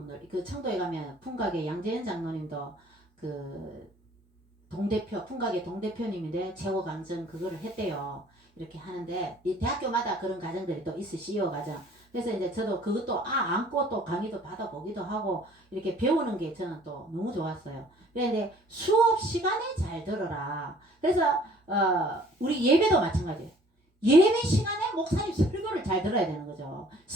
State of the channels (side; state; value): both; normal; correlation 0.55